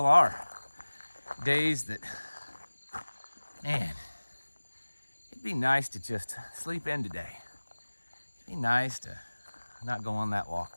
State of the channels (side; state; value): both; inverted; correlation -1.00